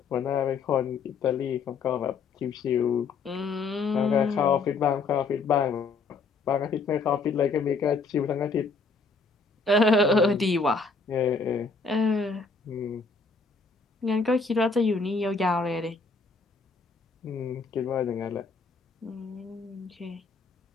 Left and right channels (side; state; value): right; quieter; 4.4 dB